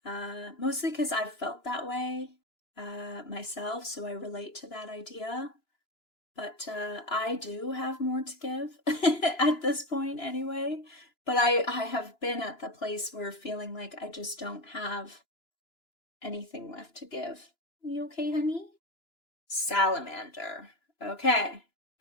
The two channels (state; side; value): late; right; 2.9 ms